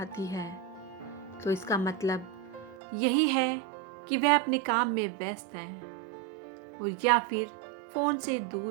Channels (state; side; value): drops out; left; at 2.8 s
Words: है तो इसका मतलब यही है कि वह अपने काम में व्यस्त है और या फिर फ़ोन से